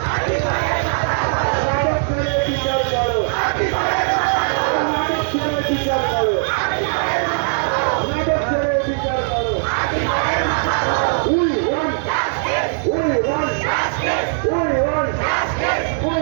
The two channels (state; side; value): silent; left; digital silence